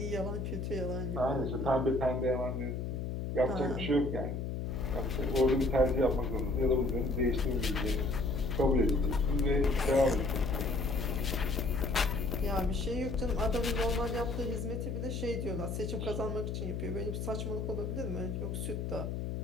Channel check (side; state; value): left; noise; hum, 3 dB below the sound